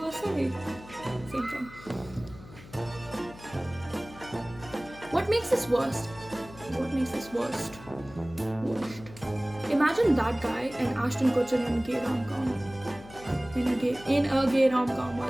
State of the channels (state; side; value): noise; left; hum, 18 dB below the sound